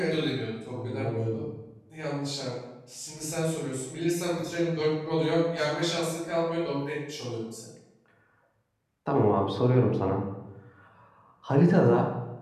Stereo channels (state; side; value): identical; both; correlation 1.00